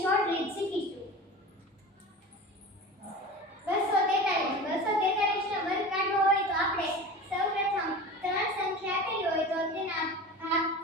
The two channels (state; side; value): normal; both; correlation 0.33